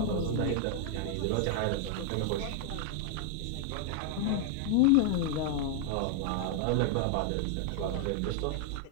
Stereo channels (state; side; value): different; both; correlation 0.00